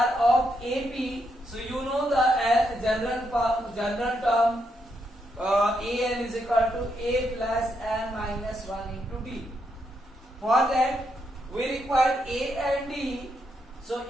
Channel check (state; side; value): normal; both; correlation 0.80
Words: of AP, so you know the general term an is equal to a plus n minus 1 into d. For that we require a and d. So